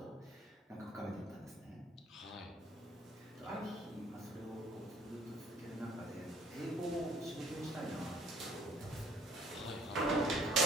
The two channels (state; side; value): normal; both; correlation 0.57